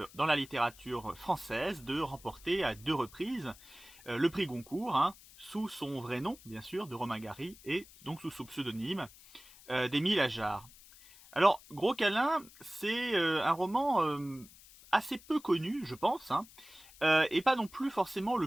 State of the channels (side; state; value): left; noise; hiss, 22 dB below the sound